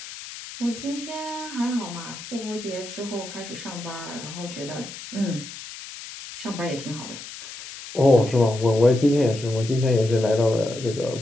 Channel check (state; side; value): noise; left; hiss, 12 dB below the sound